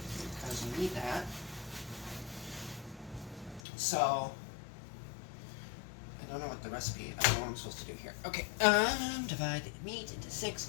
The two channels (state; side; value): drops out; right; at 3.6 s